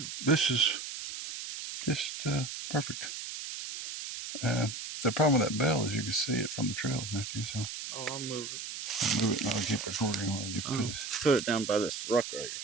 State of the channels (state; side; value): noise; right; hiss, 7 dB below the sound